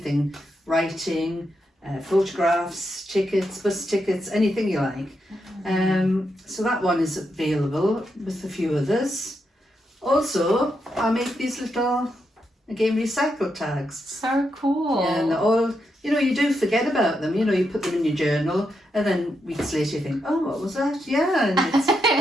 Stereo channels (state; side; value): normal; both; correlation 0.83